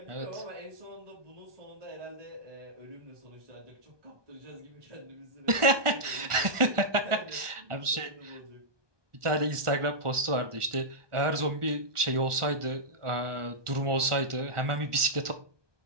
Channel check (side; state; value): left; late; 1.4 ms